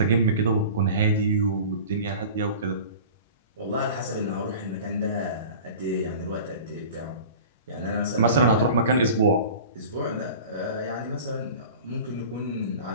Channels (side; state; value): both; inverted; correlation -0.39